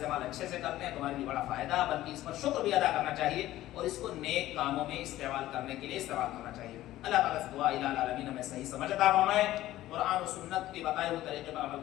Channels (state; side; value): quieter; right; 15.0 dB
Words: اچھے سے کرتے ہیں تو ہمارے لیے بڑا فائدہ، بلکہ اس پر شکر بھی ادا کرنا چاہیے اور اس کو نیک کاموں میں استعمال کرنے کے لیے استعمال کرنا چاہیے۔ اللہ تعالیٰ سے دعا الہ العالمین ہمیں صحیح سمجھ عطا فرمائے، قرآن و سنت کے بتائے ہوئے طریقے پر عمل